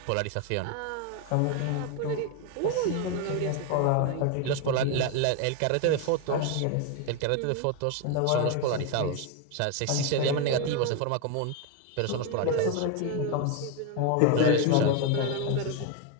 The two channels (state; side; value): different; both; correlation 0.01